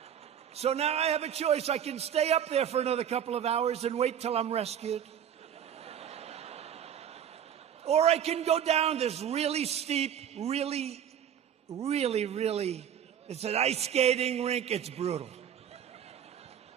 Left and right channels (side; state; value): left; quieter; 9.2 dB